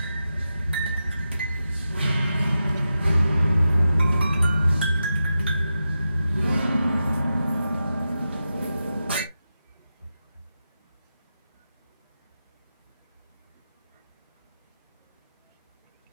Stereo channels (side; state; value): both; inverted; correlation -0.90